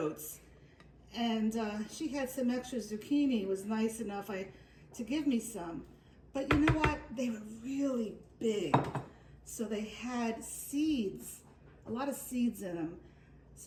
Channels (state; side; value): identical; both; correlation 1.00